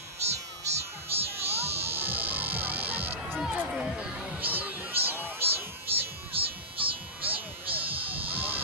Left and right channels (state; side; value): normal; both; correlation -0.18